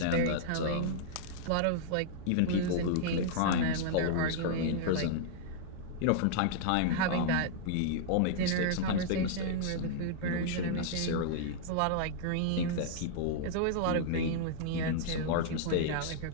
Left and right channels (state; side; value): different; both; correlation -0.01